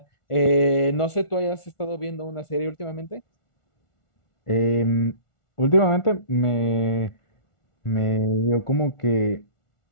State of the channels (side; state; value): right; late; 1.4 ms